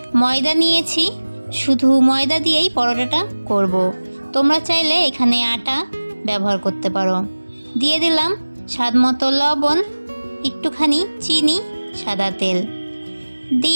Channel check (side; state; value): both; inverted; correlation -1.00